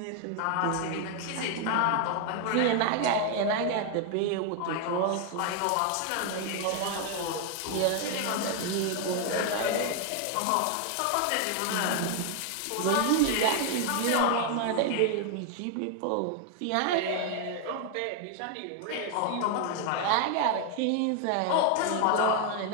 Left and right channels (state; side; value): different; both; correlation 0.01